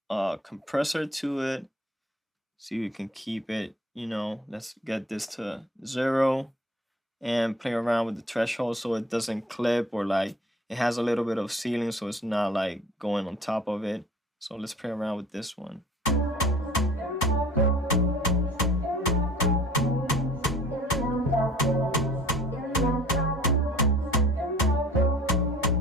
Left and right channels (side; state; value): both; normal; correlation 0.49